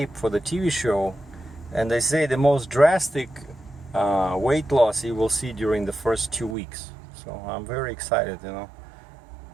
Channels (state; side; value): drops out; left; at 6.6 s